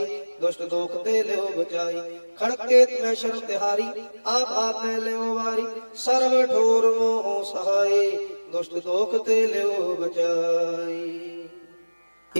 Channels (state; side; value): inverted; both; correlation -1.00